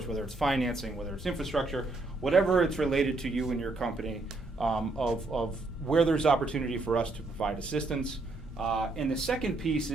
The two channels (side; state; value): left; quieter; 3.2 dB